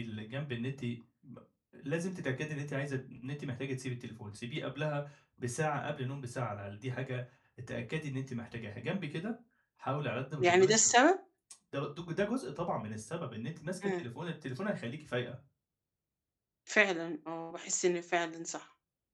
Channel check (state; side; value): identical; both; correlation 1.00